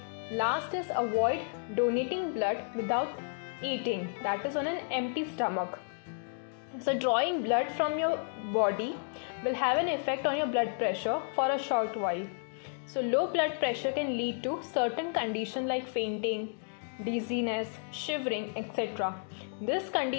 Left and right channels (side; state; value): right; silent; digital silence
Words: Last is avoid donating blood without eating, that is on an empty stomach. So drawing blood from your body will have an effect on your blood pressure for a short while. So low blood pressure can lead to certain conditions like fainting, dizziness, shivering, etc. This